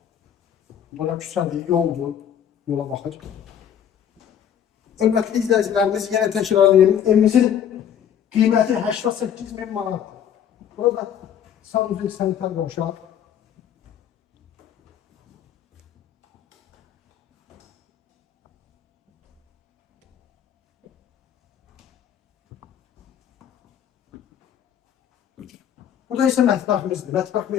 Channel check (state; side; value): quieter; right; 9.2 dB